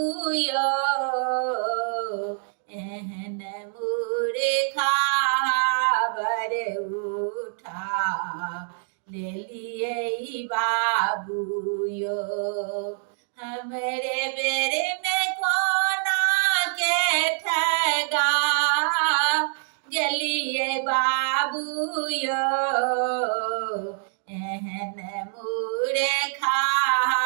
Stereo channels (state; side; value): silent; left; 61 dB below the other